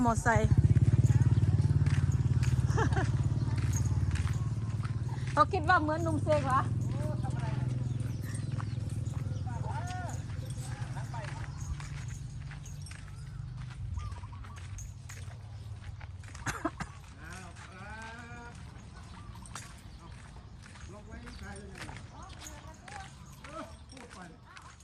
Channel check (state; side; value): identical; both; correlation 1.00